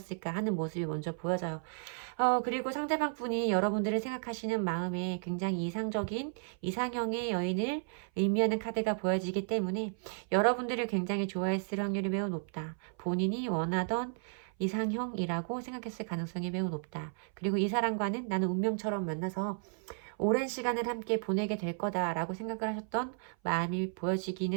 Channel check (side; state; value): left; silent; 55 dB below the other